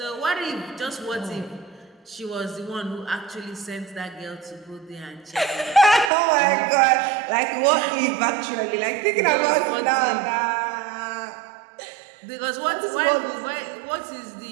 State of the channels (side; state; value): left; drops out; at 6.1 s